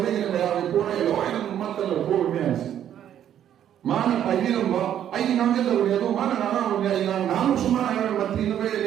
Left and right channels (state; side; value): quieter; left; 10.3 dB